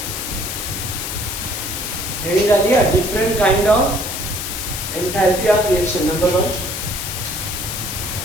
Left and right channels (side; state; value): left; noise; hiss, 5 dB below the sound